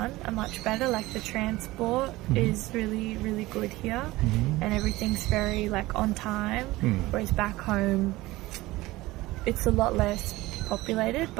are much better. Like the transport is really, really good here, and everything's very like on time. Whereas back home, it's a lot less populated,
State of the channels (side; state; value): left; quieter; 19.1 dB